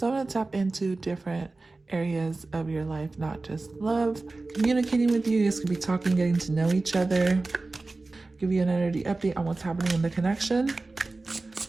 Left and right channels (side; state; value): left; quieter; 3.4 dB